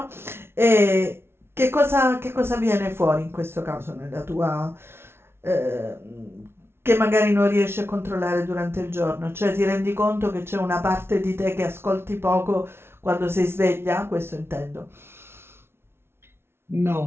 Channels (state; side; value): late; left; 0.12 ms